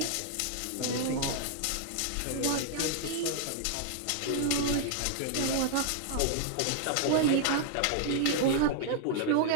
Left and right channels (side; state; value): both; different; correlation 0.00